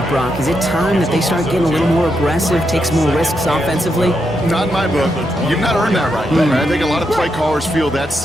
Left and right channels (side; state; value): both; normal; correlation 0.82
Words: Brock? Is it time that they start getting a little more aggressive, take some more risks offensively? Not in my book. You've not earned that right. I think a lot of play callers feel that